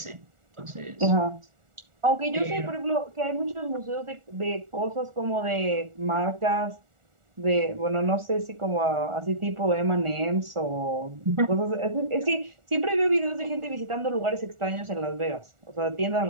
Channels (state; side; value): late; left; 1.4 ms